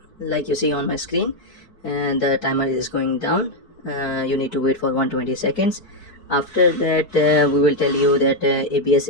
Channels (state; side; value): late; right; 4.6 ms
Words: like you see on my screen, and the timer is going down. You need to wait for 120 seconds. After that, we will tell you that ABS